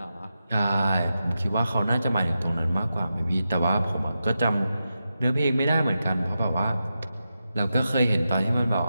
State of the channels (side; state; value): both; inverted; correlation -0.89